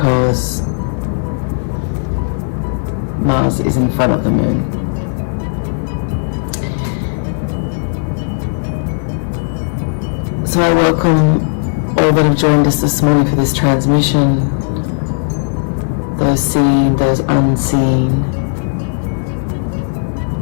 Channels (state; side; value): silent; right; digital silence